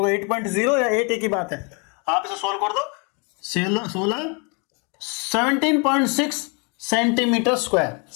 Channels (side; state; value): right; quieter; 33.9 dB